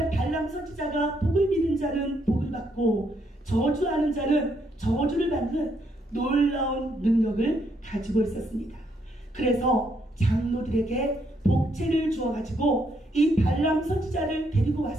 선지자가 복을 비는 자는 복을 받고 저주하는 자는 저주를 받는 놀라운 능력을 가지고 있었습니다. 그래서 장로들에게 복채를 주어가지고 이 발람 선지자를 데리고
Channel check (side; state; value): both; normal; correlation 0.74